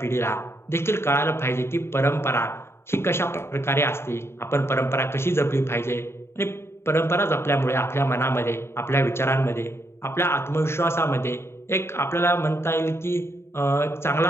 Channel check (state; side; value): late; right; 0.12 ms